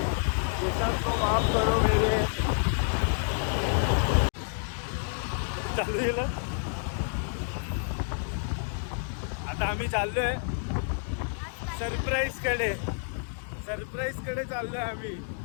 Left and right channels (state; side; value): silent; right; 57 dB below the other